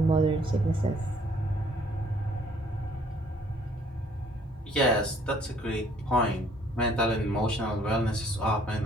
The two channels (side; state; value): both; normal; correlation 0.61